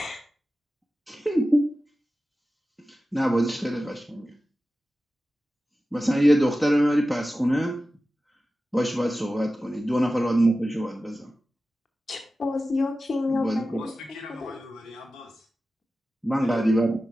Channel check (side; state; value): both; normal; correlation 0.94